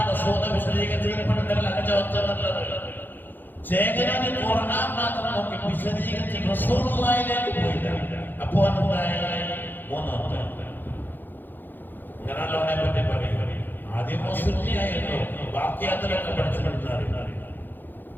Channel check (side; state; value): right; late; 0.090 ms